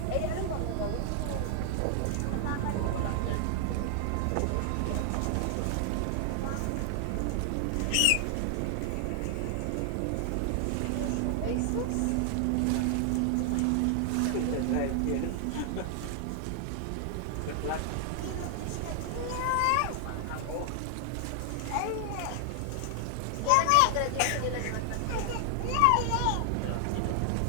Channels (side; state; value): both; different; correlation 0.00